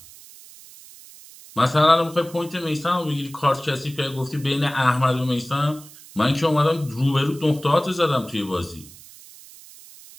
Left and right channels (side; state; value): right; noise; hiss, 20 dB below the sound